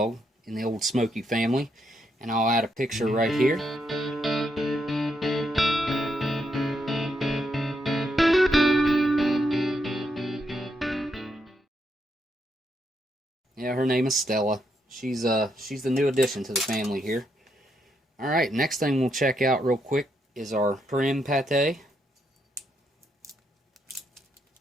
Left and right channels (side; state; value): both; normal; correlation 0.79